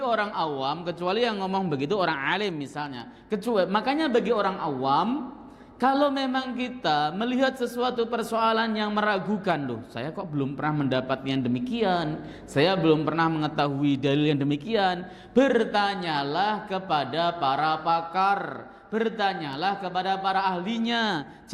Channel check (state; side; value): identical; both; correlation 1.00